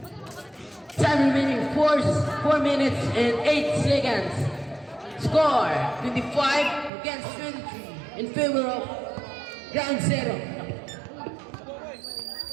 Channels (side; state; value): left; drops out; at 6.9 s